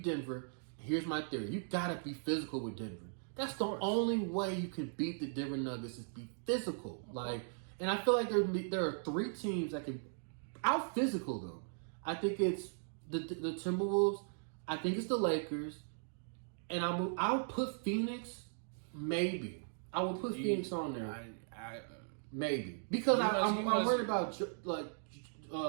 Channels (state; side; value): silent; left; digital silence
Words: Denver, here's my theory, you gotta be physical with Denver. That's the only way you can beat the Denver Nuggets is be physical. And I feel like there are 3 teams that can out physical them. I think it's the Timberwolves, I think it's the Lakers, and I'll put Phoenix, maybe. I will put Phoenix on there. Maybe. Because I'm worried about